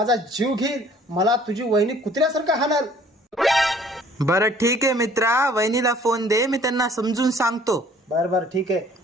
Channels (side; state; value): both; normal; correlation 0.55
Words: जीव घेईल. मला तुझी वहिनी कुत्र्यासारखं हाणल. बरं ठीक आहे मित्रा, वहिनीला फोन दे, मी त्यांना समजून सांगतो. बर बर ठीक आहे,